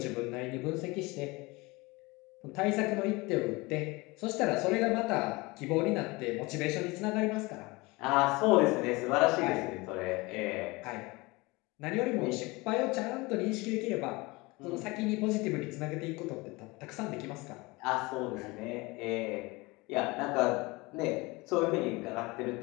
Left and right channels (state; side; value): quieter; right; 23.8 dB